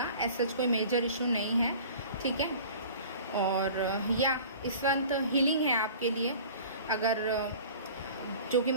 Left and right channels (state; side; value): inverted; both; correlation -0.43